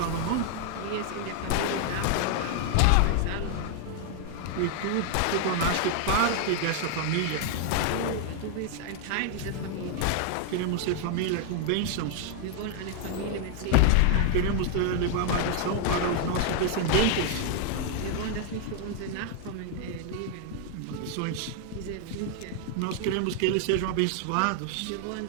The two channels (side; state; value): both; different; correlation 0.00